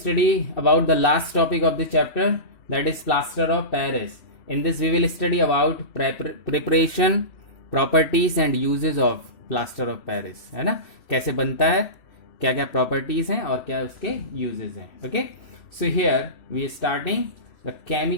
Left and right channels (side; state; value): right; late; 2.6 ms